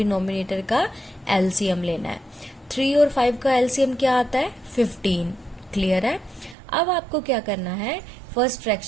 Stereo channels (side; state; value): left; drops out; at 6.6 s